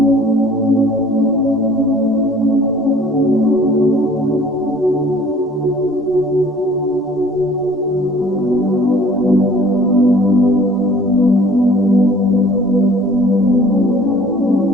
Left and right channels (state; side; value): normal; both; correlation 0.51